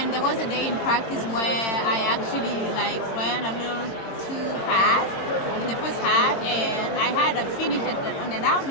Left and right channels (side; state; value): right; late; 22 ms